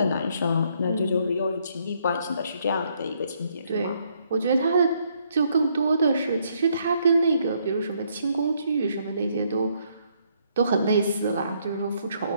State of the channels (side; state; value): both; inverted; correlation -0.71